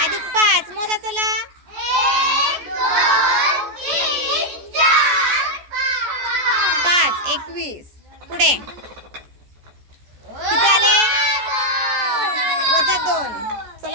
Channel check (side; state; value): left; late; 14 ms